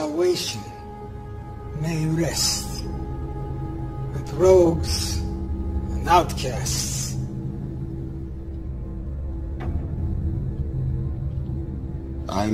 may rest with rogues and outcasts. I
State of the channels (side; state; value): both; identical; correlation 1.00